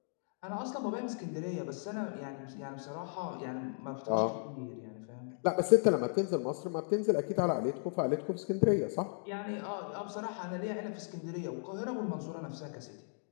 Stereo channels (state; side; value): silent; right; digital silence